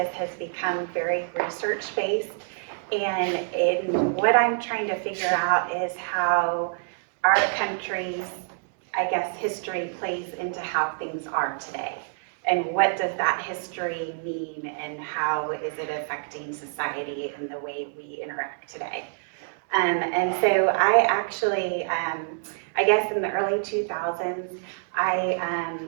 has become very research-based. And what I'm trying to figure out is how our country's, I guess, history plays into how things are today. And what does that history mean, and how is it affecting society and the way we interact today? And so I actually, I guess in the early 2000s, I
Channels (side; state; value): left; silent; digital silence